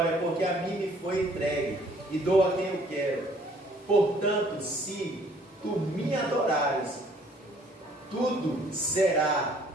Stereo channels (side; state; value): both; normal; correlation 0.60